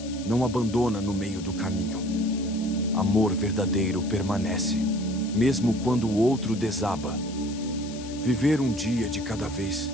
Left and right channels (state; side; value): noise; left; hiss, 16 dB below the sound